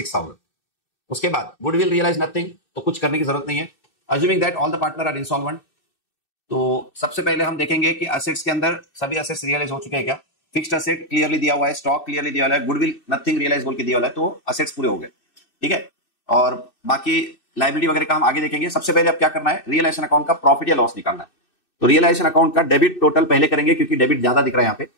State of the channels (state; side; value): late; right; 2.6 ms